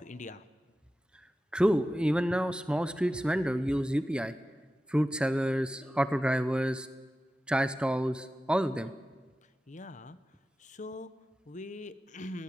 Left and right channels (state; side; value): normal; both; correlation 0.94